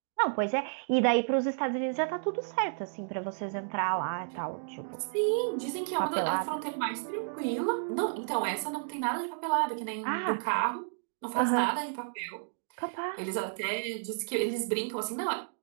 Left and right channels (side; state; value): left; silent; digital silence